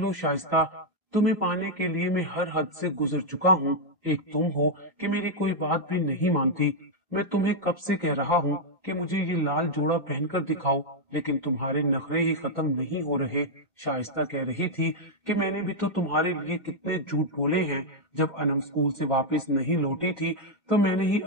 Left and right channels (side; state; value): both; normal; correlation -0.02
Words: शाइस्ता, तुम्हें पाने के लिए मैं हर हद से गुजर चुका हूँ। एक तुम हो कि मेरी कोई बात भी नहीं मानती। मैं तुम्हें कब से कह रहा हूँ कि मुझे ये लाल जोड़ा पहनकर दिखाओ, लेकिन तुम्हारे नखरे ही खत्म नहीं हो रहे। शाइस्ता कह रही थी कि मैंने भी तो तुम्हारे लिए कितने झूठ बोले हैं। जब अनम स्कूल से वापस नहीं लौटी थी तो मैंने ही